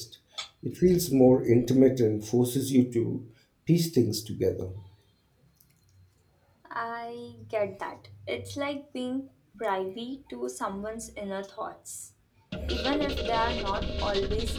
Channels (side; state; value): both; identical; correlation 1.00